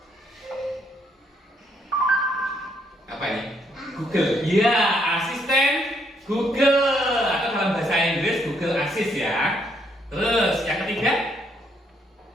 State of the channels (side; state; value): both; normal; correlation 0.72